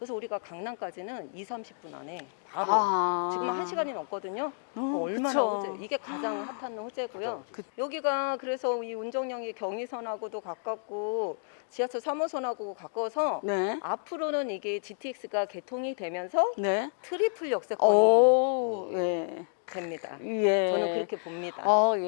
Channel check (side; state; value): right; silent; digital silence